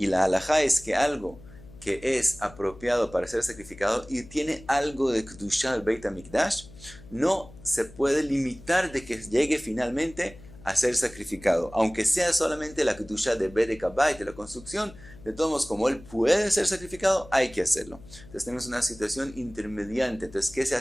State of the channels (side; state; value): left; noise; hum, 20 dB below the sound